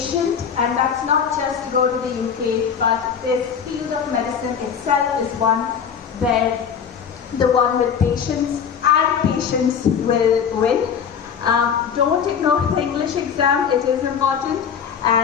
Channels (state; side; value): quieter; right; 7.3 dB